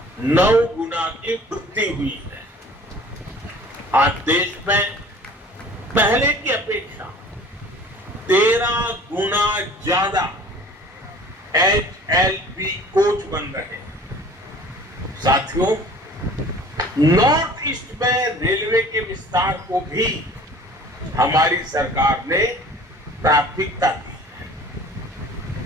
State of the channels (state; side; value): normal; both; correlation 0.47